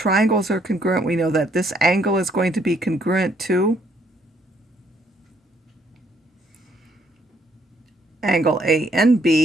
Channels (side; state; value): both; normal; correlation 0.69